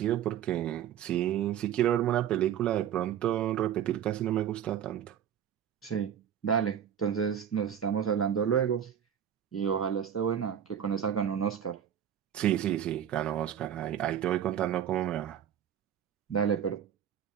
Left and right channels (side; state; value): left; quieter; 9.5 dB